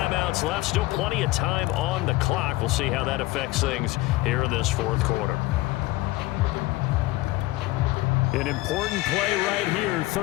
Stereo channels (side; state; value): right; quieter; 19.2 dB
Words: left. Still plenty of time on the clock. We'll see how that affects things here in this fourth quarter. An important play right here,